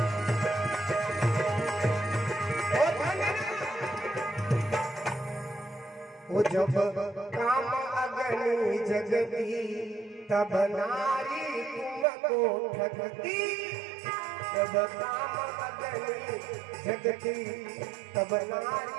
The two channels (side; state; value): left; drops out; at 12.1 s